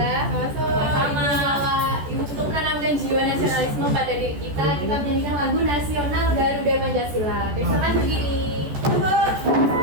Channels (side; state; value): left; late; 14 ms